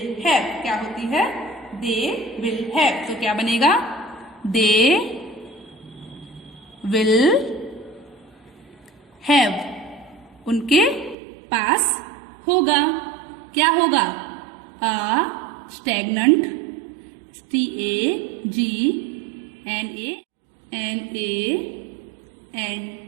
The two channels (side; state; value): left; drops out; at 11.2 s